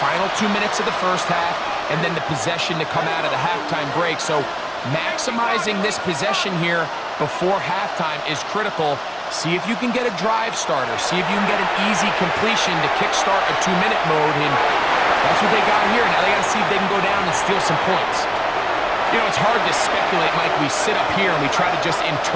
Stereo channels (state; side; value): identical; both; correlation 1.00